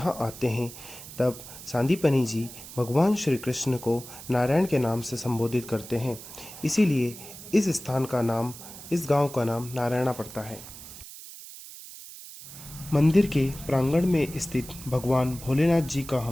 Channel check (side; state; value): right; noise; hiss, 15 dB below the sound